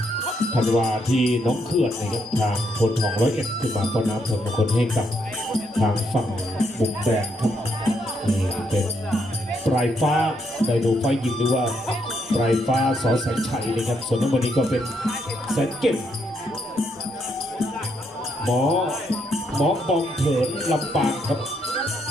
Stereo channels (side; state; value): both; normal; correlation 0.76